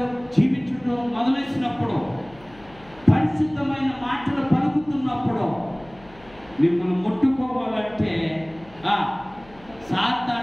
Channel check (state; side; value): noise; left; hum, 24 dB below the sound